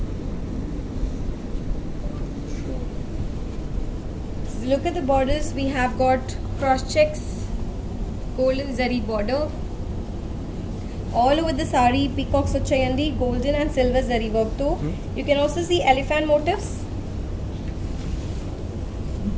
So look at the borders. We have got cross checks, golden zari border. All over the sari peacocks vachayandi, golden and silver zari work too. You can also see elephant motifs,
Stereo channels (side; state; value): both; identical; correlation 1.00